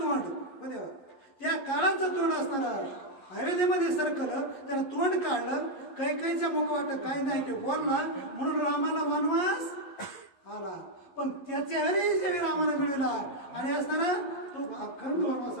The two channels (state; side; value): late; right; 11 ms